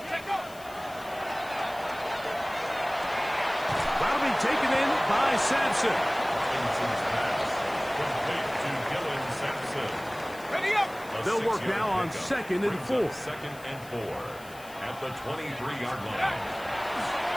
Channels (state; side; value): noise; left; hiss, 20 dB below the sound